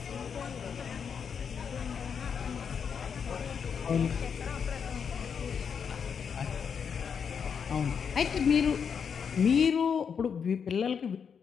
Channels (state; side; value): quieter; right; 6.8 dB